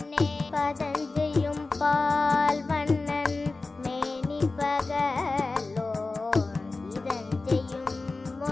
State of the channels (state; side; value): quieter; right; 3.6 dB